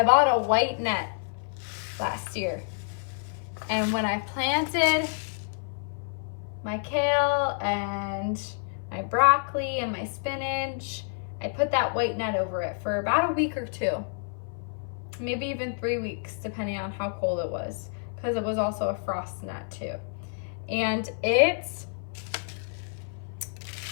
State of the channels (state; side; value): silent; right; 56 dB below the other